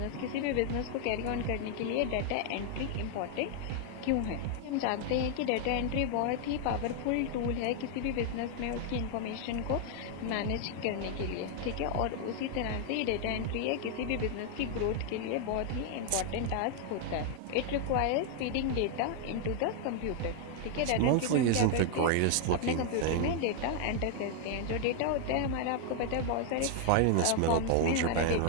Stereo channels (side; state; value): both; different; correlation 0.00